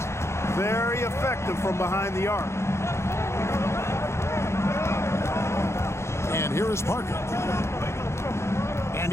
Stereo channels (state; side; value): late; right; 0.13 ms